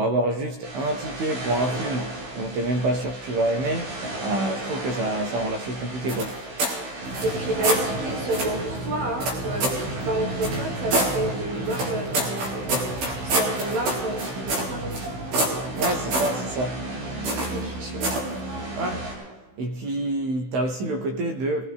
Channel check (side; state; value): left; late; 16 ms